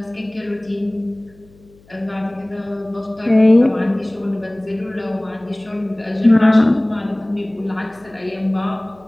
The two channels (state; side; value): noise; left; hum, 28 dB below the sound